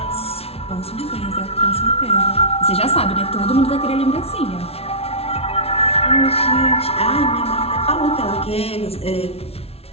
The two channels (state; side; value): late; right; 0.30 ms